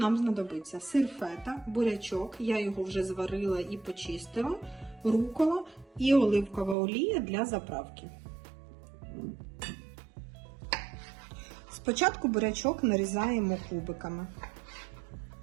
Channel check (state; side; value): drops out; left; at 6.8 s